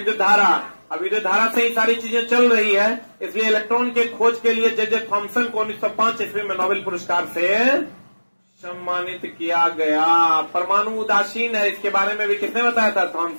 धारा। अब विद्युत धारा से ही सारी चीजें चल रही है, इसलिए इलेक्ट्रॉन के खोज के लिए जे थॉमसन को 1905 ईस्वी में नोबेल पुरस्कार से सम्मानित किया गया। परमाणु उदासीन है, इसके बारे में भी किसने बताया था?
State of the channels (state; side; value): inverted; both; correlation -1.00